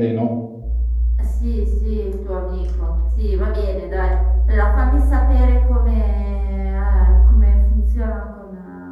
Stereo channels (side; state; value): both; identical; correlation 1.00